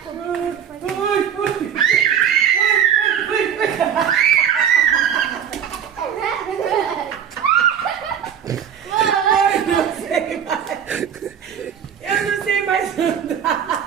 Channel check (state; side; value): quieter; left; 8.5 dB